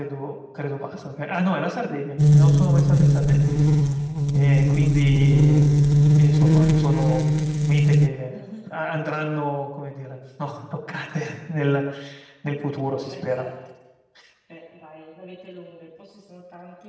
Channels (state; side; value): identical; both; correlation 1.00